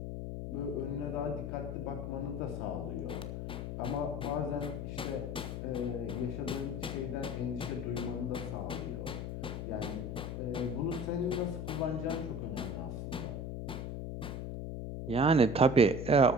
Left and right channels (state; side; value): noise; left; hum, 5 dB below the sound